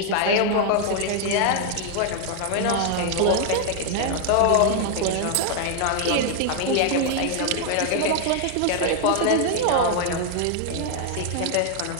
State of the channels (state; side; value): different; both; correlation 0.00